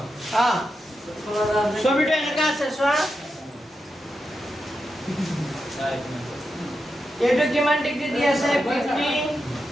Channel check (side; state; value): both; normal; correlation 0.88